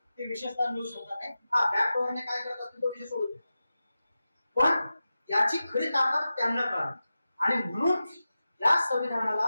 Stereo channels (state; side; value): inverted; both; correlation -0.93